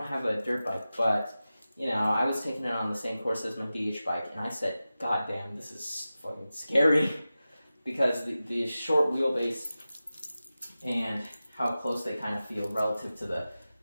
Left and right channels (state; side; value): inverted; both; correlation -0.95